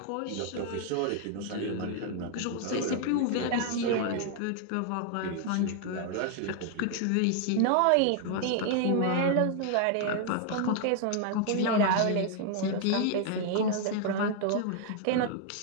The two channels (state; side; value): different; both; correlation 0.00